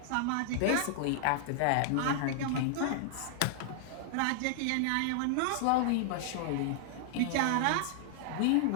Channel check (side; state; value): both; different; correlation -0.01